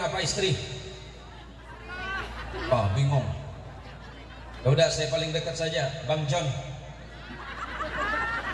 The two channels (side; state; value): both; identical; correlation 1.00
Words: istri? Bingung. Ya udah, saya paling dekat saja, Bang John.